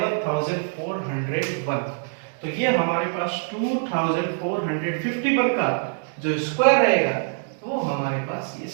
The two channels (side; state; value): left; silent; digital silence